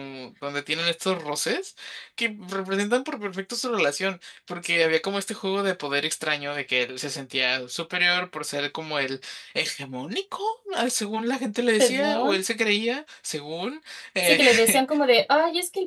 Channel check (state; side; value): identical; both; correlation 1.00